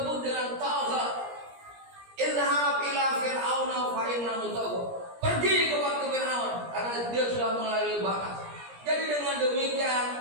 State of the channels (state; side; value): late; left; 17 ms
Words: dengan tagha. Izhab ila fir'auna fa innahu tagha. Pergi kepada Fir'aun karena dia sudah melalui batas. Jadi dengan demikian